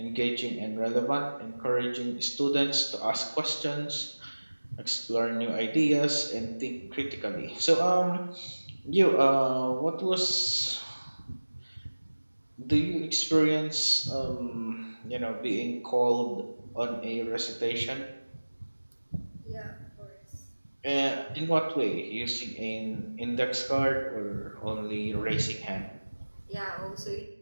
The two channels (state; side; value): inverted; both; correlation -1.00